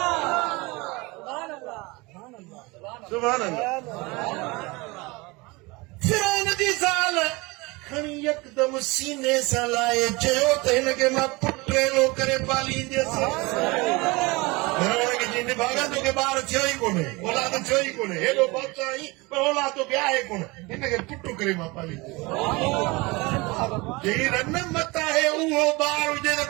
सुभान अल्लाह। फिरौन जी ज़ाल खणी यकदम सीने सां लाए चयो त हिनखे मां पुटेलो करे पालींदसि। भागा तोखे ॿार थियो ई कोन्हे, औलाद थियो ई कोन्हे, हेॾो बादशाह आई पर औलाद तोखे आहे कोन, हिनखे पुटु करे मां पालींदुसि। जेही रन मत आहे उहो ॿार हुजे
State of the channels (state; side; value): quieter; left; 24.6 dB